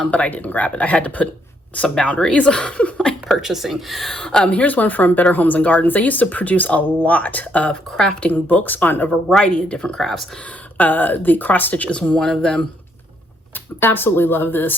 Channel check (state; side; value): normal; both; correlation 0.73